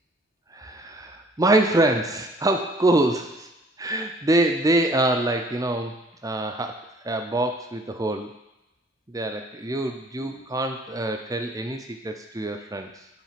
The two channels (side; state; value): both; normal; correlation 0.56